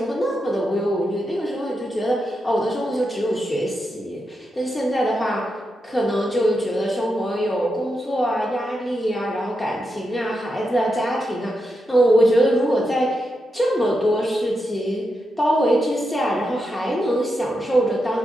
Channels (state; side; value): normal; both; correlation 0.86